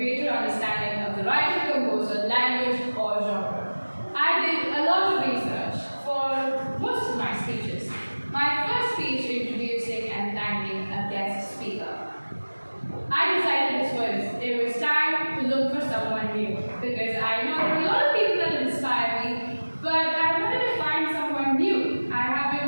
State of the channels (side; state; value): both; inverted; correlation -1.00